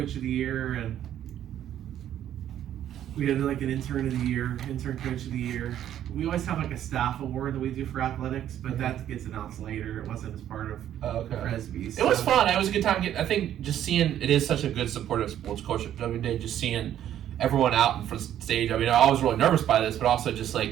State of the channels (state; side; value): quieter; left; 11.1 dB